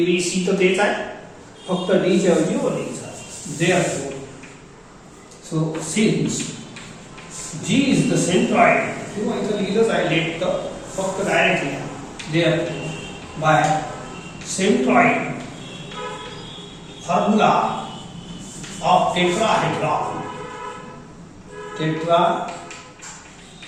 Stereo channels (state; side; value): identical; both; correlation 1.00